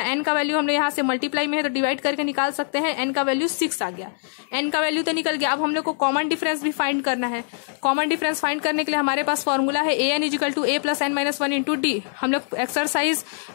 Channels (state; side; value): silent; right; 63 dB below the other